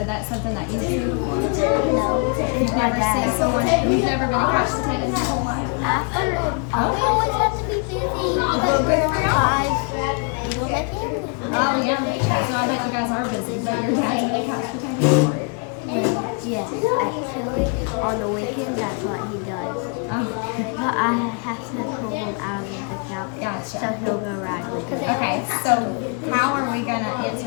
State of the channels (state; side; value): quieter; right; 35.7 dB